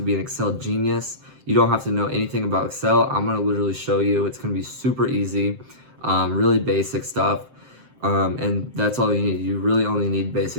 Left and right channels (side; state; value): left; late; 7.6 ms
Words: be an Excel genius. You don't have to know anything about Excel. I'm gonna literally show you. It's gonna be super easy, really basic stuff. And that's all you need. You really only need